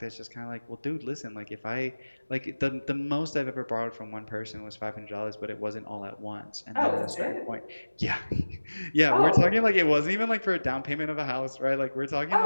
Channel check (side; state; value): both; inverted; correlation -1.00